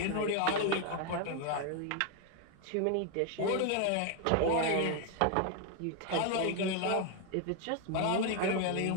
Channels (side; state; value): both; different; correlation 0.01